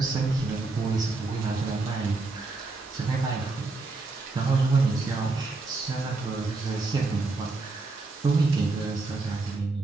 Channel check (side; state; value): left; quieter; 3.6 dB